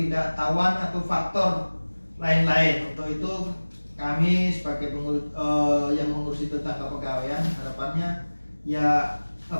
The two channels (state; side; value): inverted; both; correlation -1.00